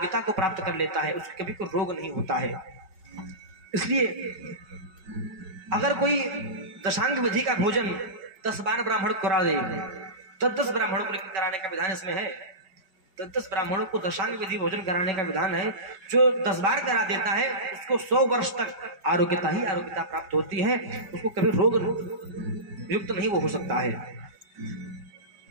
को प्राप्त कर लेता है, उसको कभी कोई रोग नहीं होता है। इसलिए अगर कोई दशांग विधि का भोजन 10 बार ब्राह्मण को करा दे, 10 ब्राह्मणों को कराने का विधान इसमें है, 10 ब्राह्मणों को दशांग विधि भोजन कराने का विधान है। जो 10 बार करा देता है उसको 100 वर्ष तक आरोग्यता ही आरोग्यता प्राप्त होती है, उसको कभी रोग युक्त नहीं वो हो सकता है।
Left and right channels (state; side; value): late; left; 5.2 ms